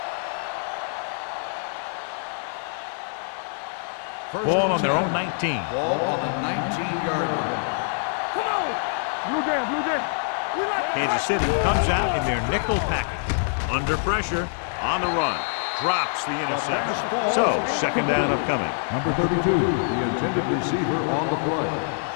Ball on their own 19. Ball on the 19-yard line. Come on. Blue Jay, Blue Jay. We like Kansas City comes out in their nickel package. Under pressure, on the run. Drops the interception. So, second down upcoming. Number 32, the intended receiver on the play.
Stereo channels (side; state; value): right; silent; digital silence